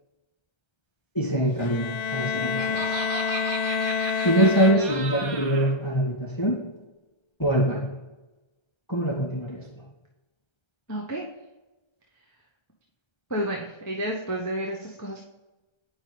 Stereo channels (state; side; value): late; right; 1.3 ms